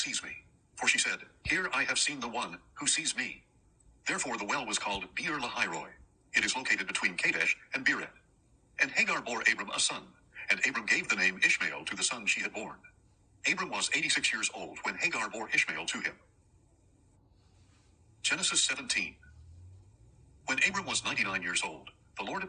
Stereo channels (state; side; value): identical; both; correlation 1.00